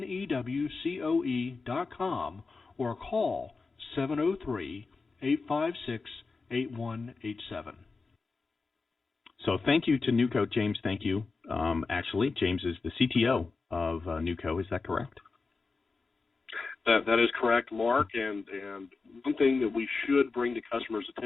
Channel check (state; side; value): quieter; right; 4.2 dB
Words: or call 703-856-8187. So thank you to NewCo, James. Thank you. Actually, James is the CTO of NewCo. Is that correct? That is correct, Mark. And one thing that we should bring to customers'